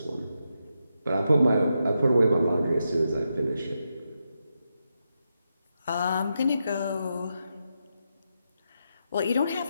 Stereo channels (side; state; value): both; inverted; correlation -0.85